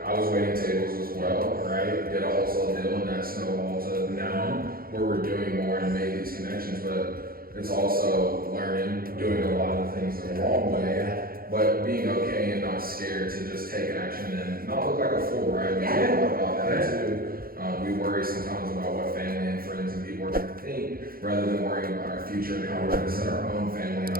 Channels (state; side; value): late; left; 0.43 ms